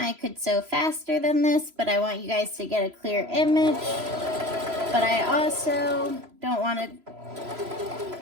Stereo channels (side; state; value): left; late; 3.0 ms